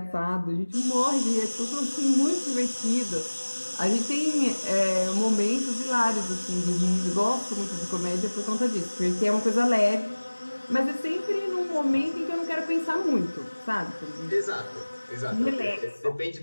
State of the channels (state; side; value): inverted; both; correlation -1.00